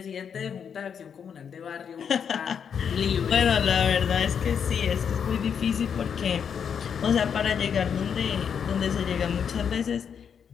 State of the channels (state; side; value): quieter; right; 7.4 dB